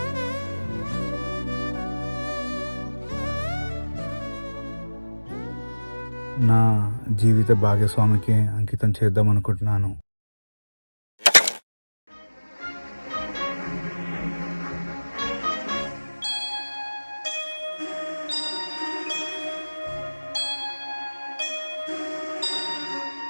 నా జీవిత భాగస్వామికి అంకితం చేద్దాం అనుకుంటున్నాను.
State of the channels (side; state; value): both; inverted; correlation -1.00